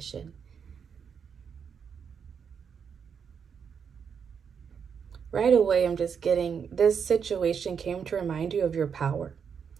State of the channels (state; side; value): quieter; left; 6.9 dB